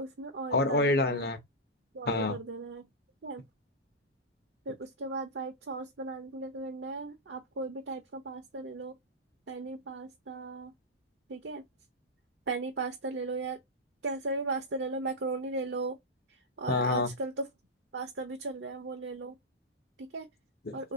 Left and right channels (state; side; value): normal; both; correlation -0.08